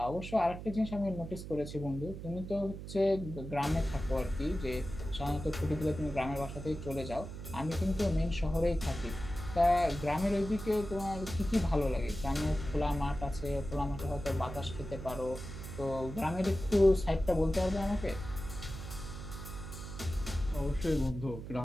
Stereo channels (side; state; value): right; noise; hum, 9 dB below the sound